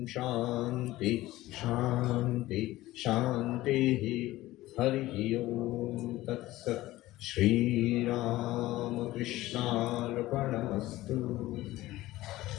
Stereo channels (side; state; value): right; quieter; 16.9 dB